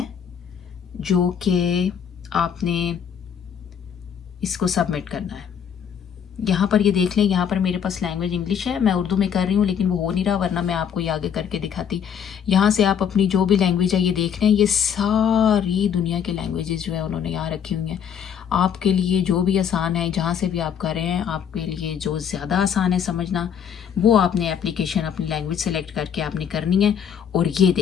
जो कि आपने इसको सबमिट करना है। यहाँ पर ये देख लें, यहाँ पर मेरे पास लैंग्वेज इंग्लिश है, मैं उर्दू में कर रही हूँ लेकिन वो हो नहीं रहा, वरना मैं आपको ये आगे करके दिखाती। यहाँ से आप अपनी जो भी लैंग्वेज है ये देख लें, ये सारी दुनिया के लैंग्वेजेस जो है उन्होंने यहाँ रखी हुई हैं आपके लिए, जो भी आसान है, जहाँ से भी आप कर रहे हैं, आपके लिए जो ज़्यादा आसान है समझना, वो आपने एप्लीकेशन अपनी लैंग्वेज सेलेक्ट करके आपने करनी है। और ये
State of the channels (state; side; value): quieter; right; 8.1 dB